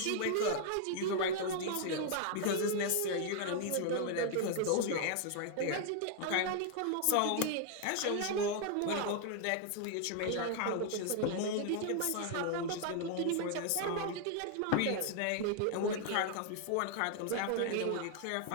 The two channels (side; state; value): both; different; correlation 0.00